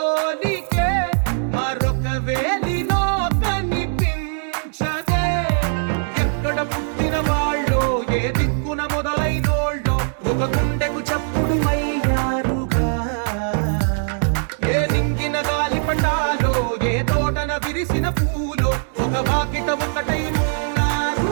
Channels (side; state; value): left; silent; digital silence